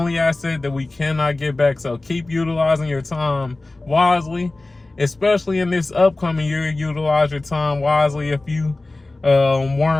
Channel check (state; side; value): quieter; right; 3.0 dB